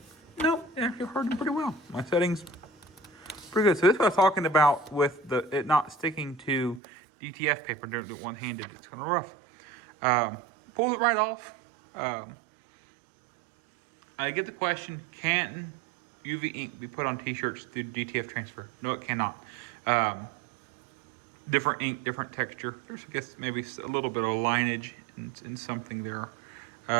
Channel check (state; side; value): drops out; left; at 6.8 s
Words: Nope, it actually hardened pretty well. My settings pretty good. So this is what I was talking about with it not sticking to DTF paper. Don't do it one-handed, it's kind of rough. Pulls it right off. I get the question, can UV ink be put on t-shirts through DTF transfer? No, it cannot. Different ink, different texture. There's, I guess, maybe a little bit of lineage in something there.